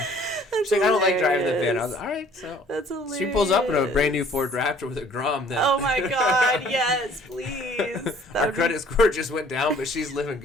She's like, I don't like driving the van. I was like, all right, so that's hilarious. She pulls up in a brand new Ford Raptor with a Grom. Then. Oh my God, yes, please. Our credit score just went down, but she's living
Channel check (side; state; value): both; normal; correlation 0.55